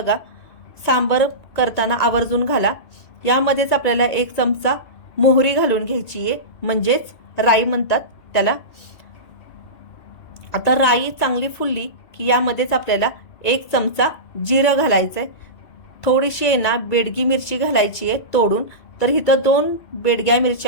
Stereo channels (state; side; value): late; right; 2.3 ms